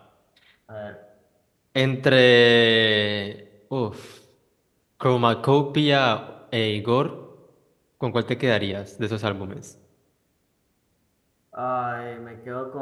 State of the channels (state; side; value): identical; both; correlation 1.00